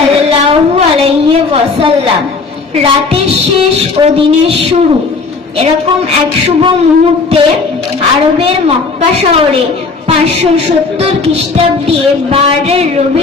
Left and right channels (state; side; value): quieter; right; 4.3 dB